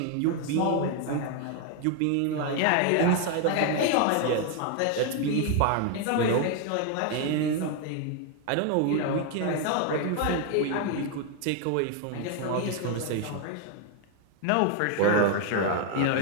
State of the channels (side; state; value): both; different; correlation 0.01